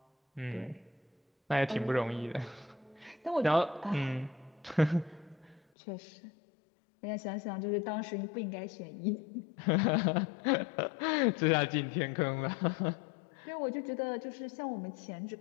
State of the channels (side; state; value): right; drops out; at 5.6 s